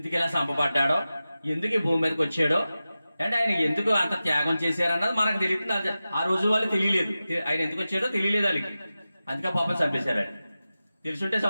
ఇలా చంపబడ్డాడో, ఎందుకు ఈ భూమి మీదకి వచ్చాడో, అంటే ఆయన ఎందుకు అంత త్యాగం చేశారన్నది మనకు తెలియదు. ఆ రోజు వాళ్ళు తెలియలేదు, ఆయన ఎందుకు వచ్చాడో తెలియలేదు వాళ్ళకి. అందుకే పాపం చంపేశారు. తెలుసుంటే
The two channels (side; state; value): both; inverted; correlation -0.94